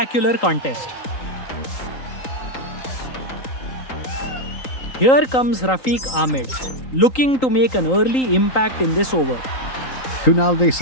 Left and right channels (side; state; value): right; late; 3.8 ms